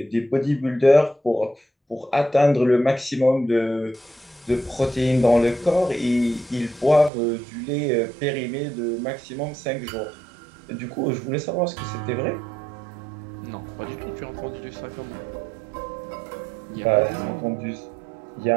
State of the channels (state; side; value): drops out; left; at 7.1 s